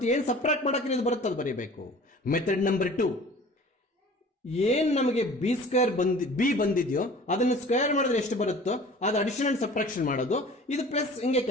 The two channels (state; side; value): normal; both; correlation 0.45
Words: ಏನ್ ಸಬ್ಟ್ರಾಕ್ಟ್ ಮಾಡಕ್ಕೆ ಇದು ಬರುತ್ತೆ ಅದು ಬರೀಬೇಕು. ಮೆಥಡ್ ನಂಬರ್ 2, ಏನ್ ನಮಗೆ ಬಿ ಸ್ಕ್ವೇರ್ ಬಿ ಬಂದಿದೆಯೋ ಅದನ್ನ ಸ್ಕ್ವೇರ್ ಮಾಡಿದ್ರೆ ಎಷ್ಟು ಬರುತ್ತೋ ಅದು ಅಡಿಷನ್ ಅಂಡ್ ಸಬ್ಟ್ರಾಕ್ಷನ್ ಮಾಡೋದು, ಇದು ಪ್ಲಸ್ ಹಿಂಗೆ